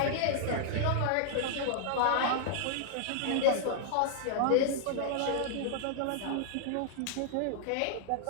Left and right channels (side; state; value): both; different; correlation -0.01